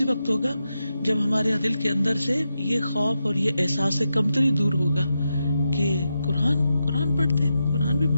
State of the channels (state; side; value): inverted; both; correlation -0.87